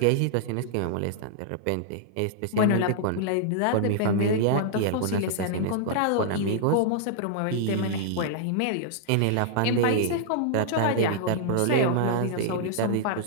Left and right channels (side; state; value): both; different; correlation -0.01